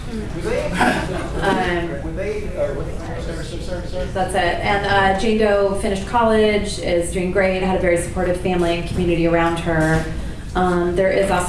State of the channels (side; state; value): both; identical; correlation 1.00